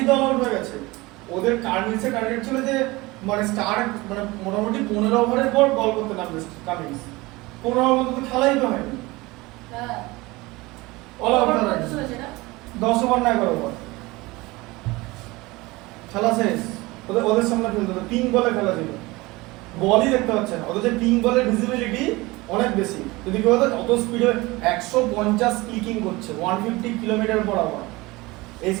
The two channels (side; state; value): left; quieter; 21.8 dB